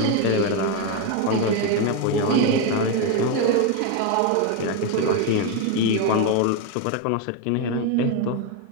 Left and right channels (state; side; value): different; both; correlation 0.02